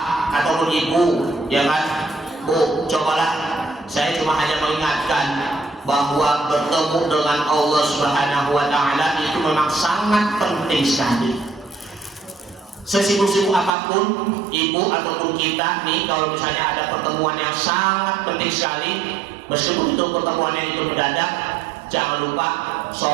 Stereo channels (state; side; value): drops out; left; at 13.7 s